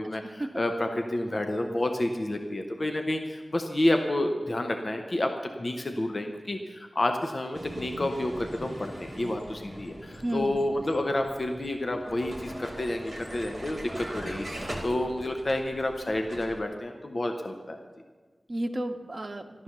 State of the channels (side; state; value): both; normal; correlation 0.96